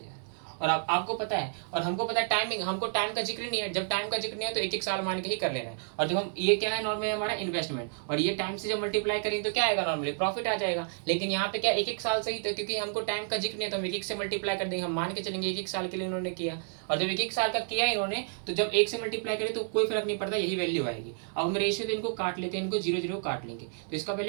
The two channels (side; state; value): left; silent; digital silence